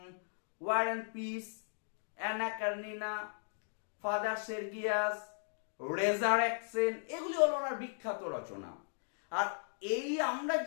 War and Peace, Anna Karenina, Father Sergius, Resurrection, এগুলি হলো ওনার বিখ্যাত রচনা। আর এই আমরা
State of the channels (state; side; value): silent; right; digital silence